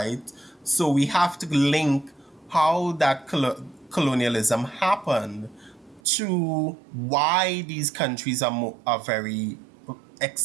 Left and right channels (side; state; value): left; drops out; at 6.0 s